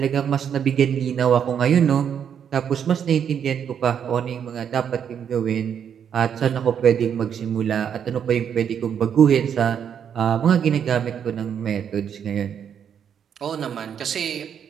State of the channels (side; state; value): left; quieter; 8.2 dB